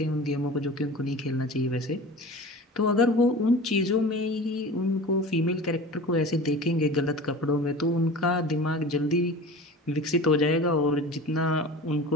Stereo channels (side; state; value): both; normal; correlation 0.37